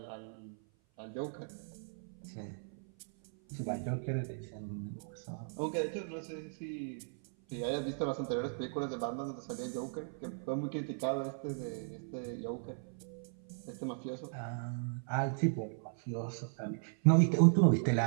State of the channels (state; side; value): silent; left; 53 dB below the other